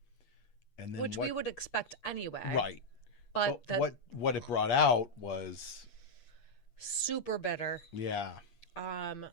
and then Which we would expect anyway. right. But that What it brought out was super bitter. yeah.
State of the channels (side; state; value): right; late; 8.5 ms